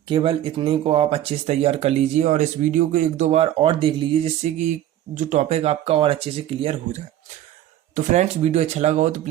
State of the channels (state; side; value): quieter; left; 12.5 dB